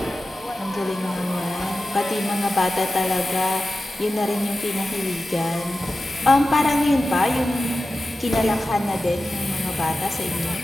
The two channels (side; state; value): both; normal; correlation 0.94